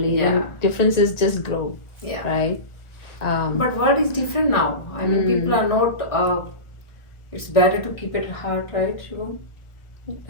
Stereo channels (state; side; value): late; right; 1.4 ms